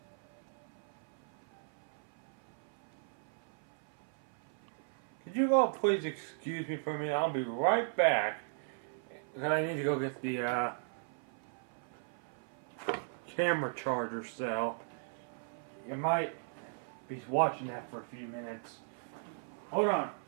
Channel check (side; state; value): left; silent; 53 dB below the other